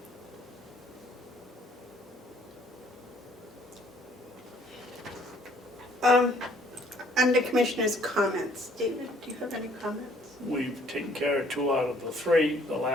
Under Commissioner's comments, David, do you have any comments? We've taken care of 2 out of the 3. The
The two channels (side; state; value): both; normal; correlation 0.61